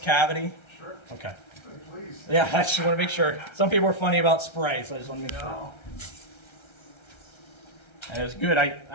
Sure. Okay. Please. Yeah, I just want to make sure. Some people are funny about spray, so I just want to make sure. And it was good. I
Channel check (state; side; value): late; right; 1.3 ms